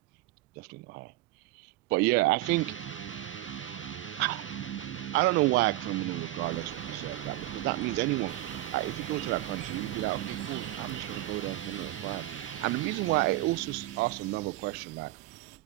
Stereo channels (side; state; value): left; quieter; 16.2 dB